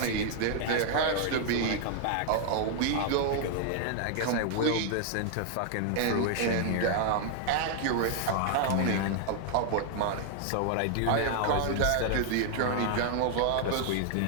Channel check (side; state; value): both; different; correlation 0.00